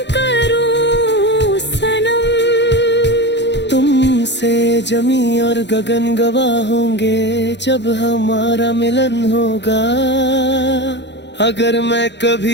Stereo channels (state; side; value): late; right; 0.51 ms